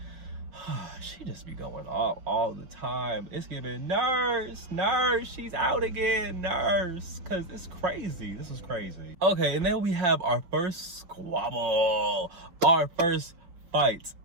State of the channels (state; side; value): late; left; 5.7 ms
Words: She just be going off all the time. It's giving nurse, she's out again, nurse. Cause it's crazy. This is crazy. Okay, and then we have our first squabble. Our first fight